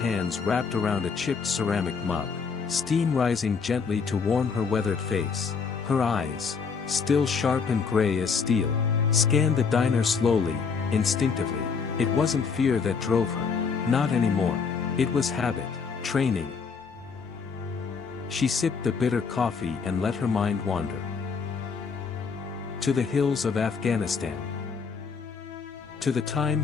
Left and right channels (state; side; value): quieter; right; 5.5 dB